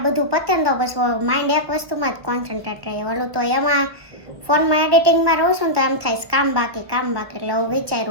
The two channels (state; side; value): late; left; 1.5 ms